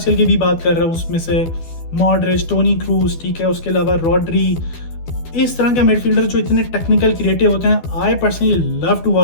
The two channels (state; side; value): late; right; 12 ms